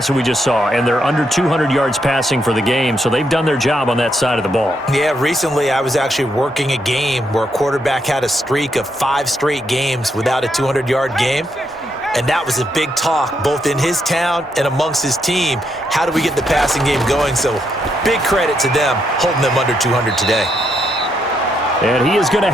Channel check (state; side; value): normal; both; correlation 0.78